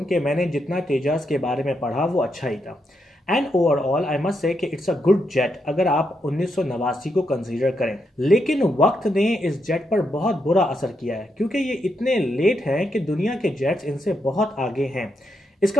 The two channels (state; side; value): normal; both; correlation 0.81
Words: कि मैंने जितना तेजस के बारे में पढ़ा वो अच्छा ही था and overall I must say कि इट्स अ गुड जेट अगर आप 1989 को कंसीडर करें। लेकिन वक्त ने इस जेट पर बहुत बुरा असर किया है क्योंकि ये इतने लेट हैं कि दुनिया के जेट्स इनसे बहुत आगे हैं।